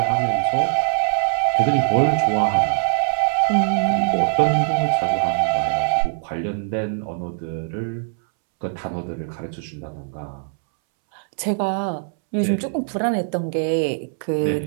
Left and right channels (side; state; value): left; silent; 65 dB below the other